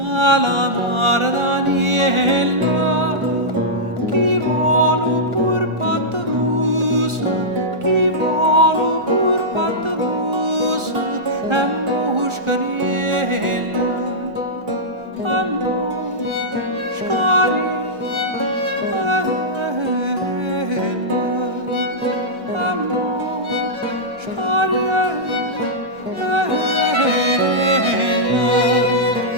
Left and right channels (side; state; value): left; late; 1.4 ms